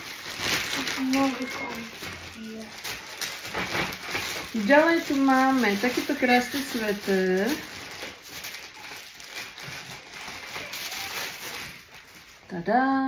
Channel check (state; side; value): identical; both; correlation 1.00